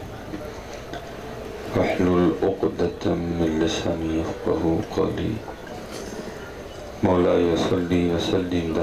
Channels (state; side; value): identical; both; correlation 1.00